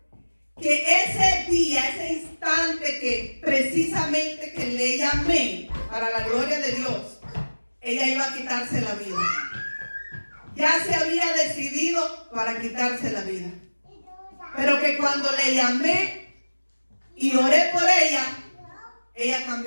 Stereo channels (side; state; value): both; inverted; correlation -1.00